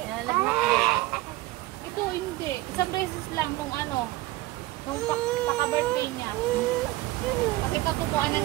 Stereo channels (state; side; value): quieter; left; 18.2 dB